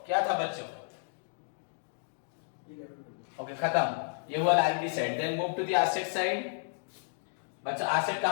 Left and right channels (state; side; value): silent; right; digital silence